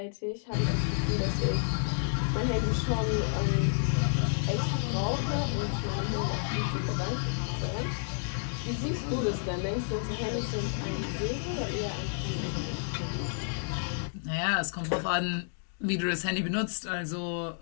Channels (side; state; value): right; silent; digital silence